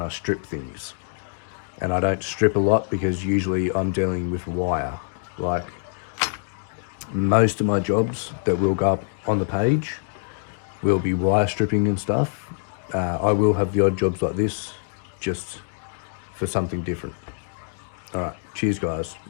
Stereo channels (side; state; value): right; silent; digital silence